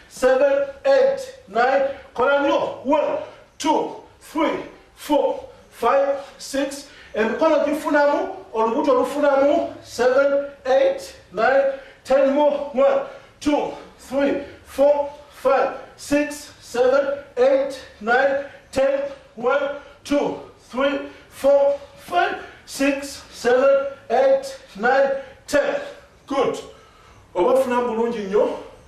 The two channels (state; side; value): identical; both; correlation 1.00